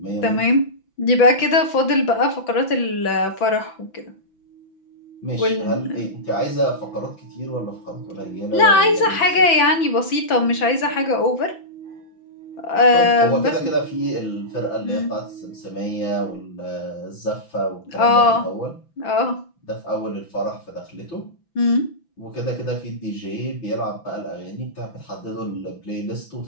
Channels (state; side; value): late; right; 5.9 ms